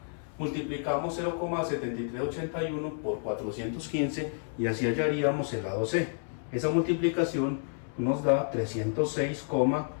Multiplicamos 0,7381 por 415 y así hallaríamos el lado C. Esa multiplicación nos da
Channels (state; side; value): silent; right; 58 dB below the other